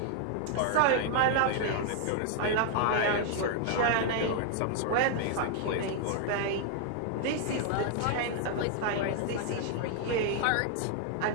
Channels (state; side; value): different; both; correlation 0.00